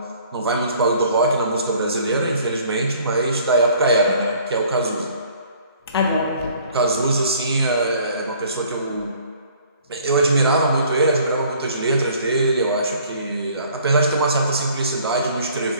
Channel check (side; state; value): both; inverted; correlation -0.56